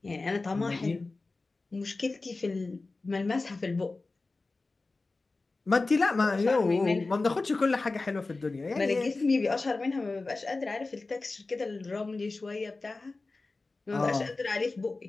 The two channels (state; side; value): quieter; right; 3.5 dB